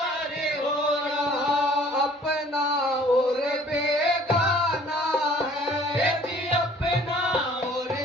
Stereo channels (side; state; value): both; normal; correlation 0.54